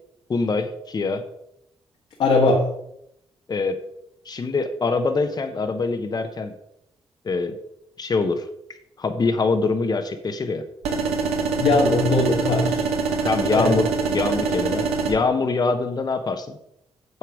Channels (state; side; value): normal; both; correlation 0.63